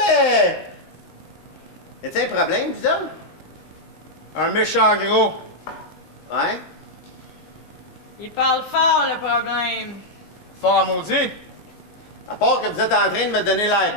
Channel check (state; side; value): late; right; 19 ms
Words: Y'a-tu un problème, vous autres? Un méchant gros. Ouais? Il parle fort, le problème. Fort à maudit. À part que vous êtes en train de me donner l'air